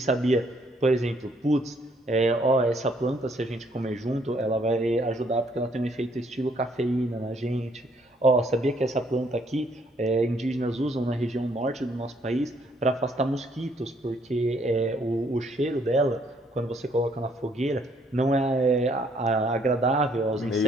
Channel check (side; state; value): both; normal; correlation 0.67